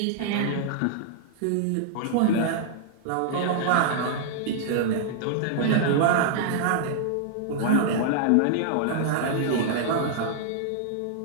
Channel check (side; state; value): both; different; correlation -0.01